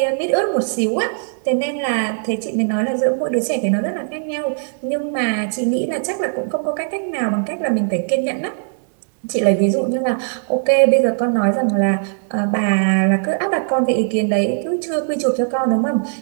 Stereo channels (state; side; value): silent; left; digital silence